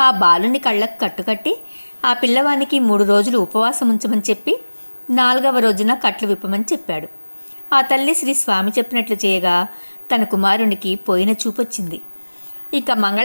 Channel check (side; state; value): both; inverted; correlation -1.00